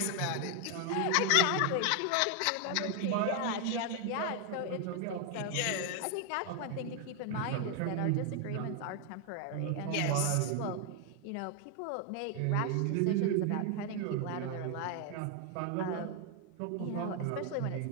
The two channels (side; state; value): both; different; correlation 0.01